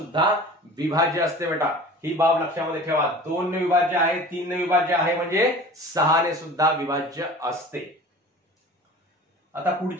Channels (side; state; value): both; normal; correlation 0.40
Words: विभाज्य असते बेटा. ही बाब लक्षामध्ये ठेवा. 2 ने विभाज्य आहे, 3 ने विभाज्य आहे म्हणजे 6 ने सुद्धा विभाज्य असते. आता